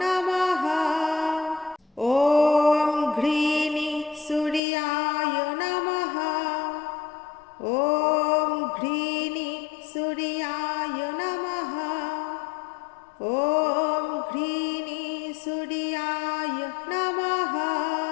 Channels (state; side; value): drops out; right; at 4.6 s